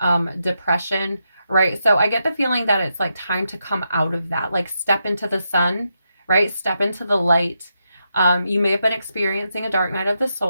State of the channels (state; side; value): inverted; both; correlation -0.84